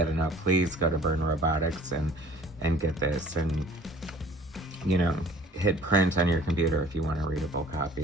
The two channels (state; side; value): normal; both; correlation 0.51